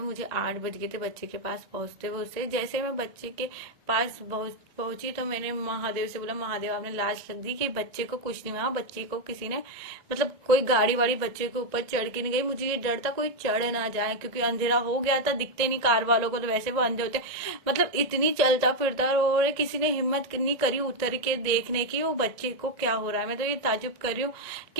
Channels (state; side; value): late; left; 2.1 ms